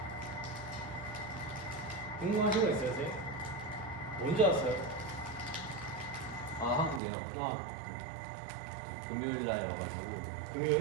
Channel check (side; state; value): left; drops out; at 7.0 s